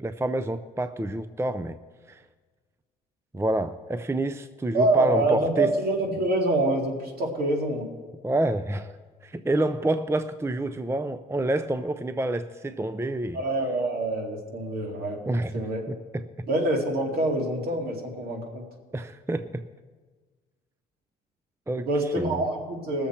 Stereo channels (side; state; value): both; normal; correlation 0.56